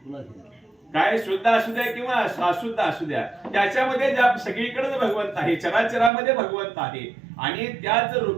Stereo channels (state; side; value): drops out; left; at 6.1 s